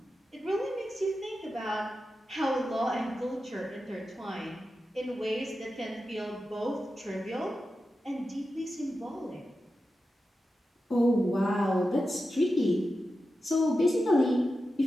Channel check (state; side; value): normal; both; correlation 0.91